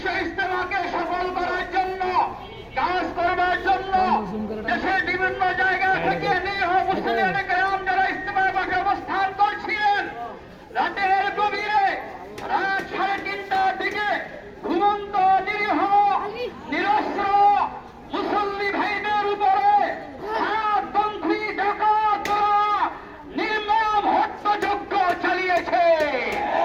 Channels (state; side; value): identical; both; correlation 1.00